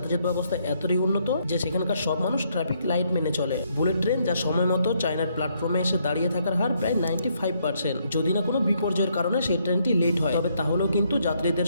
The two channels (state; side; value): inverted; both; correlation -0.73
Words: ব্যবস্থা এতটাই উন্নত যে সেখানকার সব মানুষ ট্রাফিক লাইট মেনে চলে। বুলেট ট্রেন যা সময় মতো চায়নার প্ল্যাটফর্মে এসে দাঁড়িয়ে থাকার হার প্রায় 95%। যদি না কোনো বিপর্যয়ের কারণে সেই ট্রেনটি লেট হয়, তবে তাহলেও কিন্তু যাত্রীদের